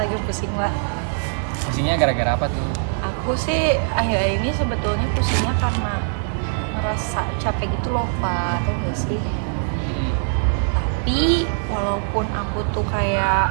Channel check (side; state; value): left; silent; 64 dB below the other